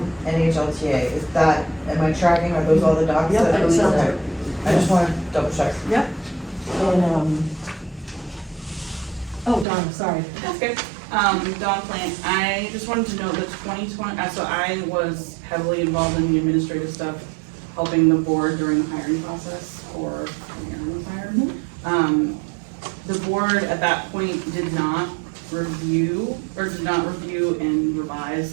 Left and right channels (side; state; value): left; drops out; at 9.7 s